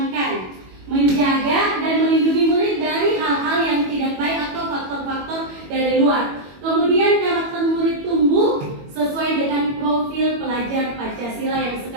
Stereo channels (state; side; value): late; left; 21 ms